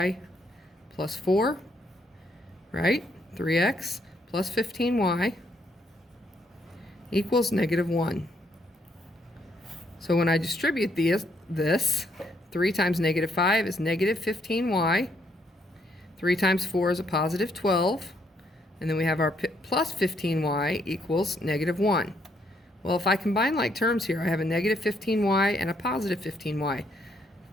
plus 4, right? 3x plus 15y equals negative 1. So when I distribute this, 3 times negative 5 is negative 15y. 3 times 4 is a positive 12. And then we have our plus 15y equals negative 1. Well, if I combine like terms here, I have a negative 15y and a positive 15y.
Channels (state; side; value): normal; both; correlation 0.72